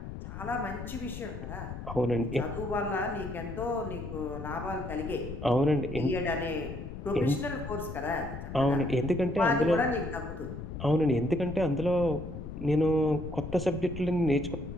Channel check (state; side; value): noise; left; rumble, 9 dB below the sound